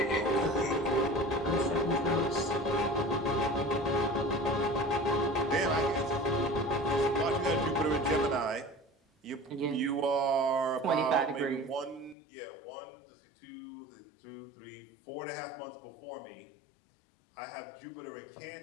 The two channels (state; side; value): drops out; right; at 12.2 s